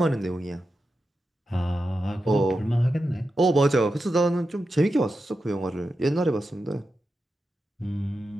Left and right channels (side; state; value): both; normal; correlation 0.89